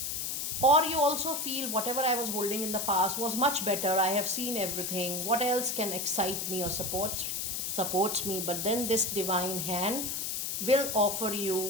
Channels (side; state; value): left; noise; hiss, 2 dB below the sound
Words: Or you also feel whatever I was holding in the past was much better. I have seen everything. What else can excite me or supports me? But then this divine hand will offer